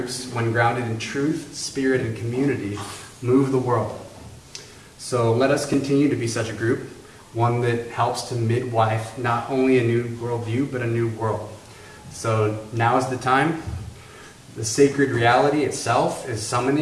when grounded in truth, spirit, and community, move the world. So let us continue to be such a group, one that helps to midwife not only a new worldview, but a new world. So now is the time. The sacred reality itself is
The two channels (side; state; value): both; identical; correlation 1.00